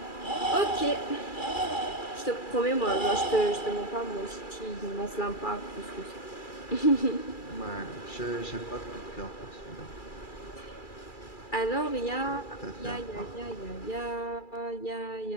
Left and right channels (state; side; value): late; right; 2.3 ms